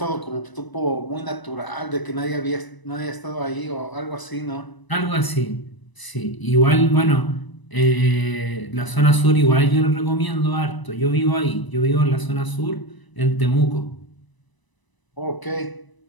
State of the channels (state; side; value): late; right; 1.0 ms